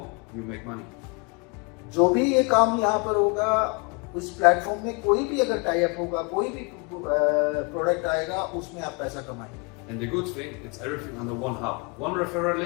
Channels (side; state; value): right; quieter; 31.8 dB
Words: you make money. जो भी ये काम यहाँ पर होगा, उस प्लेटफॉर्म में कोई भी अगर टाई अप होगा, कोई भी प्रोडक्ट आएगा, उसमें आप पैसा कमाएंगे। And the good thing, it's everything under one hub. One referral